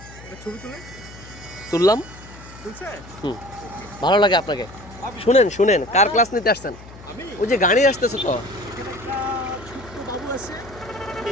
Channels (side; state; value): left; noise; hum, 18 dB below the sound